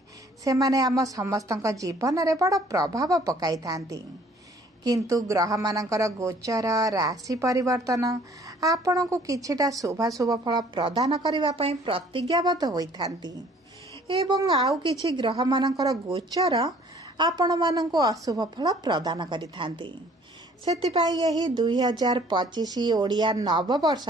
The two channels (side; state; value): both; normal; correlation 0.56